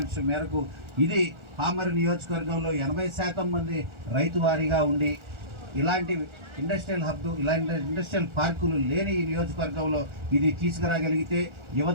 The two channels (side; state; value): left; late; 1.4 ms